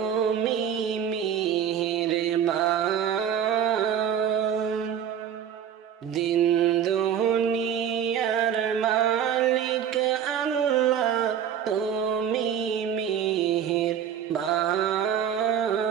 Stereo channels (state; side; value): quieter; left; 8.8 dB